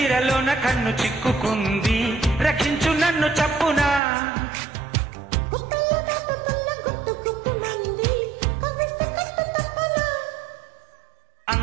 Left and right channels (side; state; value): left; drops out; at 4.0 s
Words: కన్ను చిక్కుకుంది రక్షించు నన్ను చప్పునా